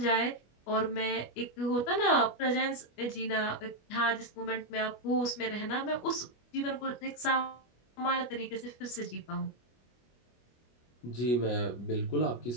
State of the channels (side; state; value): right; late; 25 ms